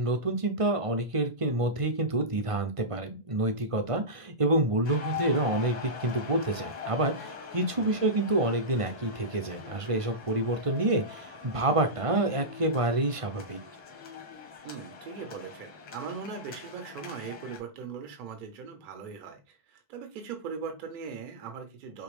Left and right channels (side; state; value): left; late; 1.5 ms